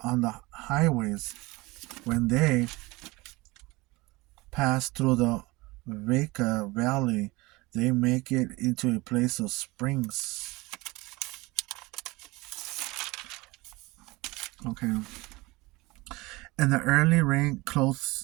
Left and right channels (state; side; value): quieter; left; 22.4 dB